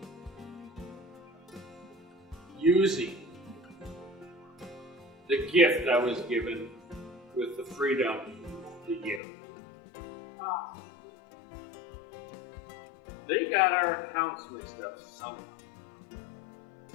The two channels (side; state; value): right; drops out; at 9.2 s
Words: using the gift I was given with the freedom to give. They got our accounts mixed up somehow.